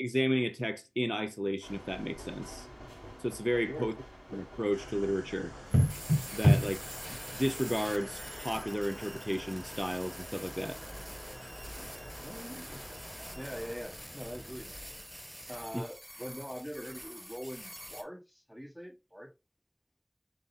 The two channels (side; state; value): both; identical; correlation 1.00